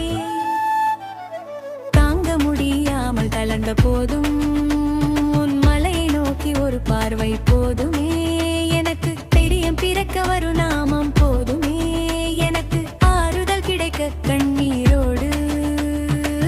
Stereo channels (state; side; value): identical; both; correlation 1.00